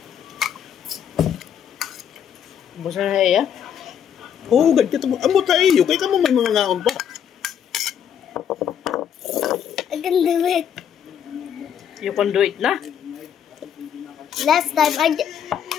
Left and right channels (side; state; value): right; quieter; 8.7 dB